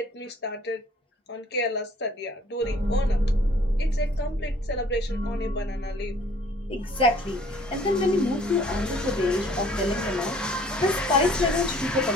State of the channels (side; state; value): both; normal; correlation 0.56